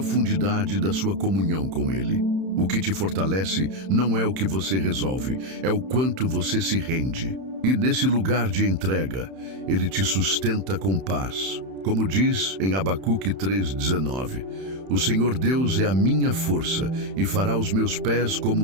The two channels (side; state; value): left; late; 31 ms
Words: da sua comunhão com ele. O que te fortalece não é o que você resolve, é o quanto você se rende. E nesse lugar de entrega, ele te sustenta com paz. Como diz em Abacuque 3:19, o Senhor Deus é a minha força e fará os meus pés